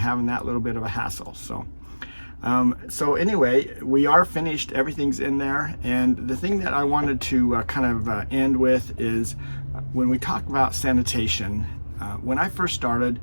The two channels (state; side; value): inverted; both; correlation -1.00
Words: that little bit of a hassle. So anyway, we are finished. Everything's in there. And the thing that I wanted to end with is when we talk about sanitation. When I first started,